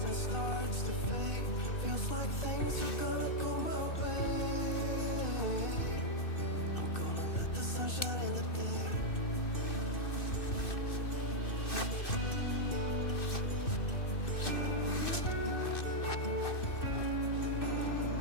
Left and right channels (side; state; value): right; late; 2.6 ms